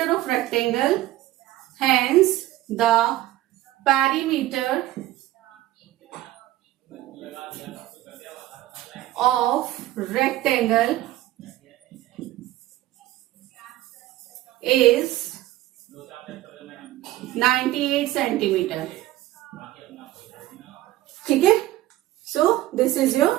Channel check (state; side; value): quieter; left; 15.6 dB